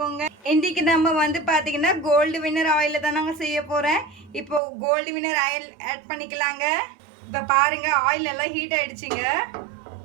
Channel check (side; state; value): left; drops out; at 4.6 s